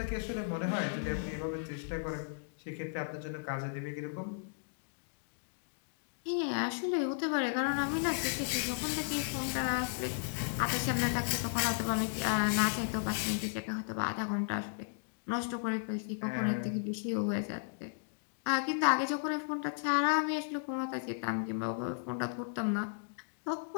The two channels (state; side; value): silent; right; digital silence